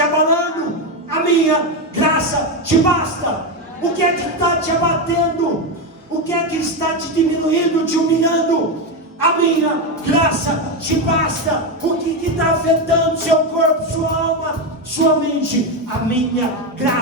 abalando? A minha graça te basta. O que é que está te abatendo? O que é que está te diminuindo, te humilhando? A minha graça te basta. O que está afetando seu corpo, sua alma, sua mente? A minha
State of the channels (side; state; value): both; normal; correlation 0.11